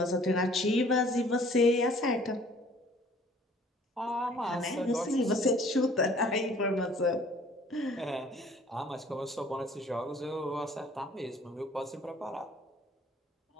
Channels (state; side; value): normal; both; correlation 0.54